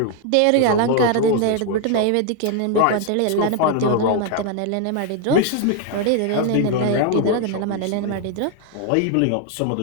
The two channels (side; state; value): both; different; correlation 0.01